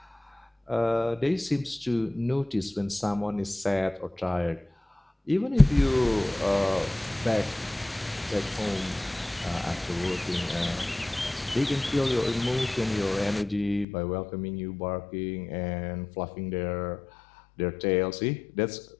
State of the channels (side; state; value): right; drops out; at 13.9 s